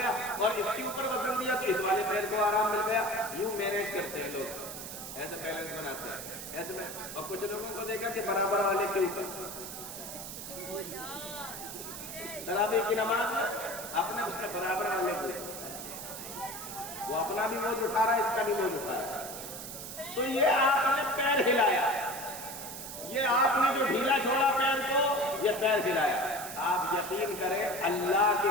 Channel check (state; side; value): noise; right; hiss, 9 dB below the sound